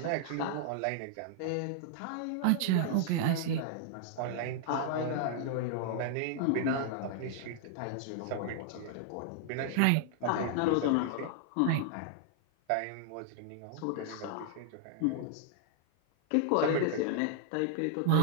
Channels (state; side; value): different; both; correlation -0.01